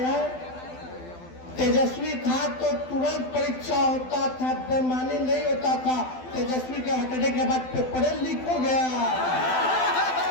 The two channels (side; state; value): right; late; 12 ms